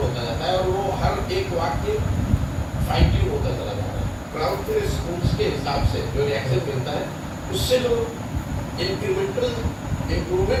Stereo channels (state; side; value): identical; both; correlation 1.00